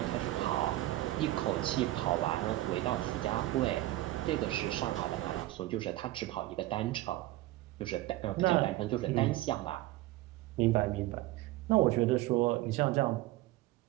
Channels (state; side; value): quieter; left; 16.8 dB